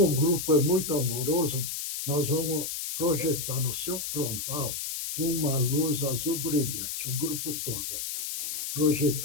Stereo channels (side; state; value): left; noise; hiss, 4 dB below the sound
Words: um grupo é muito amoroso, nós vamos projetar no seu frontal uma luz azul brilhante, o grupo todo,